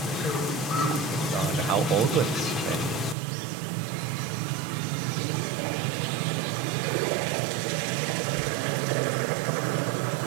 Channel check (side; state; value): left; drops out; at 3.2 s